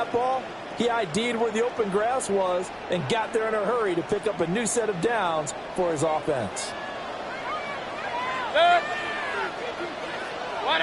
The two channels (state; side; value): identical; both; correlation 1.00